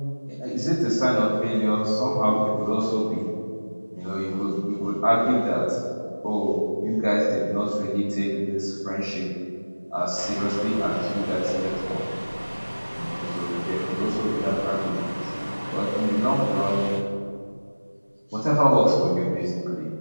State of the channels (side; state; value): both; inverted; correlation -1.00